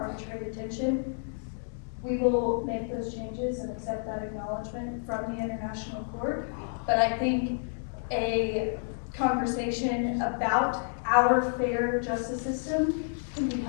arbitrary detention, we will make those changes and accept that acknowledgement from the International Court. But I think a conversation about our fair justice system can be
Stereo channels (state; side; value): silent; right; digital silence